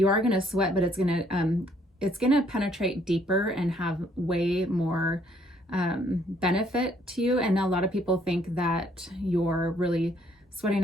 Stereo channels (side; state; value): both; normal; correlation 0.65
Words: are going to sweat, but it's going to penetrate deeper and have way more benefit to you. And a lot of people think that you're really sweating